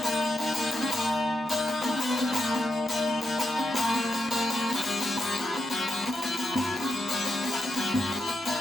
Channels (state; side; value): normal; both; correlation 0.85